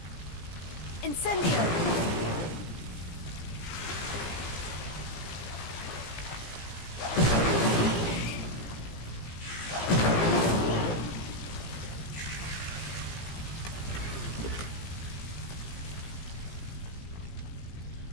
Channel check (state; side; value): late; right; 17 ms